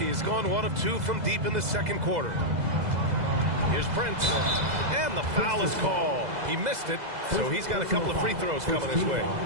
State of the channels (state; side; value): late; left; 2.0 ms